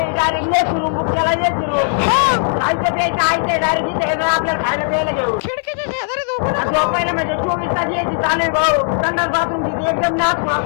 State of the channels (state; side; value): silent; right; digital silence